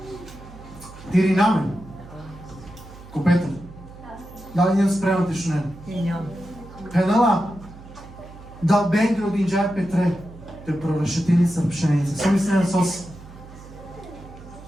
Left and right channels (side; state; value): right; noise; hum, 18 dB below the sound